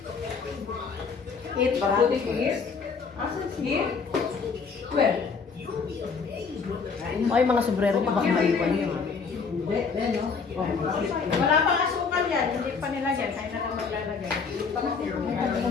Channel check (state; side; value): quieter; right; 5.2 dB